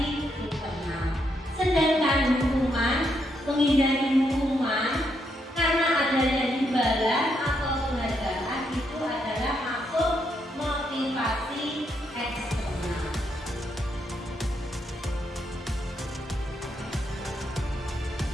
internal. Sedangkan hukuman, menghindari hukuman karena adanya imbalan atau penghargaan itu adalah masuk motivasi eksternal.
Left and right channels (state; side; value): normal; both; correlation 0.78